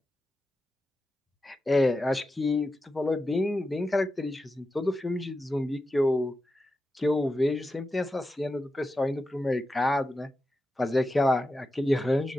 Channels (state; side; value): normal; both; correlation 0.91